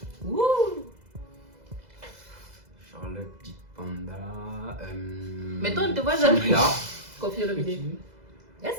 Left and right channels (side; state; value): left; late; 2.0 ms